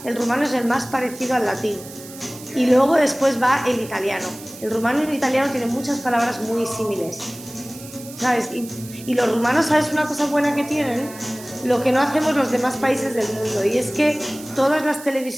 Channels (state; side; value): noise; right; hiss, 16 dB below the sound